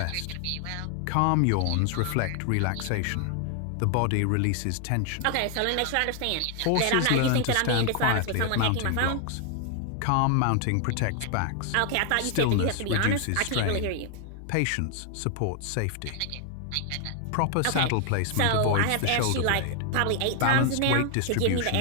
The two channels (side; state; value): both; different; correlation 0.00